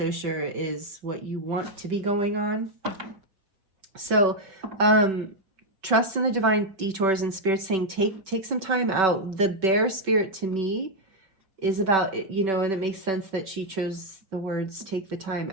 sure is what you want to be going on. So trust in the divine detours, and Spirit saying take some time out. The Bear Spirit to me is about, you know, and it makes sense that she chose the words take the time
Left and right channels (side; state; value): left; late; 5.3 ms